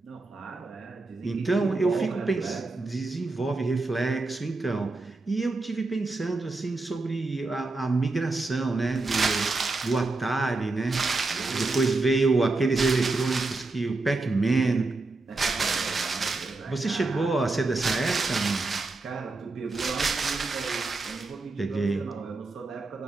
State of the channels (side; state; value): left; quieter; 3.4 dB